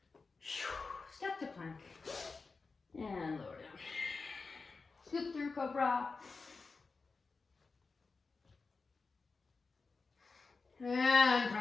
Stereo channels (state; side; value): quieter; right; 4.3 dB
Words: Step to plank. And lower down. Scoop through cobra. And